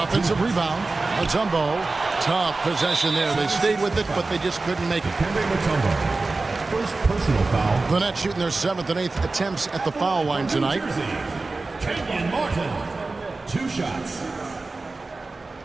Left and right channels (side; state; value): left; quieter; 3.5 dB